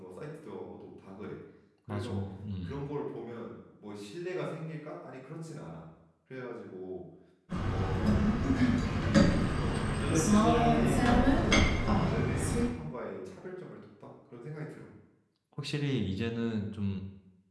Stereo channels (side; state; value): both; identical; correlation 1.00